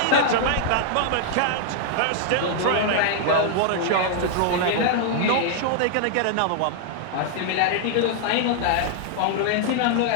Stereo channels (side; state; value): both; different; correlation 0.00